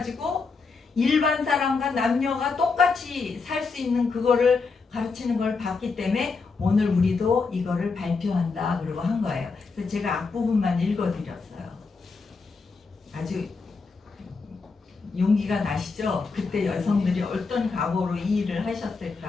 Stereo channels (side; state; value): right; quieter; 4.5 dB